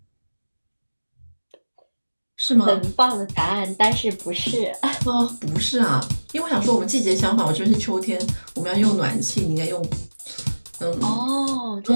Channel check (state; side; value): inverted; both; correlation -1.00